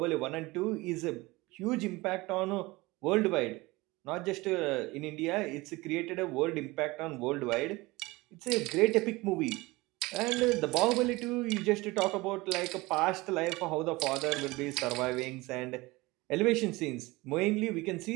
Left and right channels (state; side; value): quieter; left; 21.8 dB